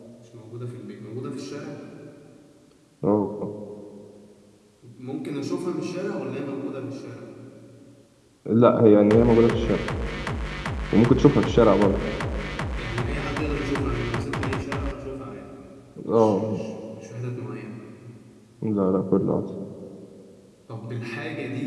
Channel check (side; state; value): both; identical; correlation 1.00